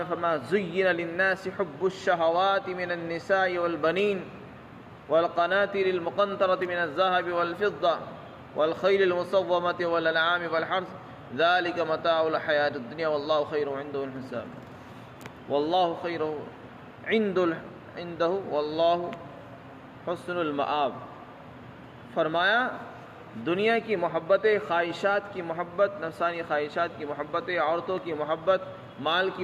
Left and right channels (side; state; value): both; identical; correlation 1.00